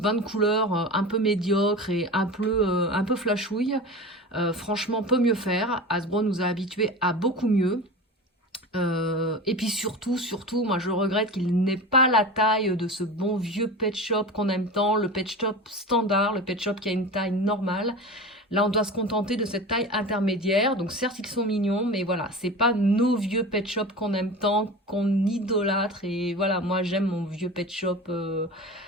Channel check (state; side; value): normal; both; correlation 0.31